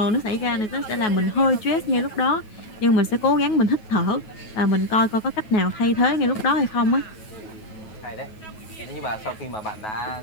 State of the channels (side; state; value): right; late; 9.3 ms